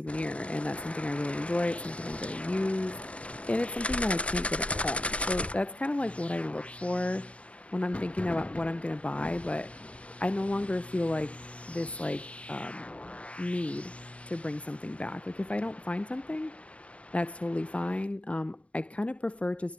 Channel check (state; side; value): late; right; 0.063 ms